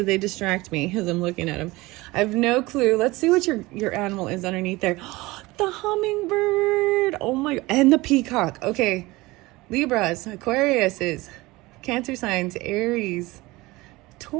they distract me as I'm looking at them. I have no clue. Let's see what your animal is underneath there. The hummingbird. Oh my, and the peacock. Okay, Libras, Aquariuses, Cancer signs, Aries,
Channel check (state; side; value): quieter; left; 20.9 dB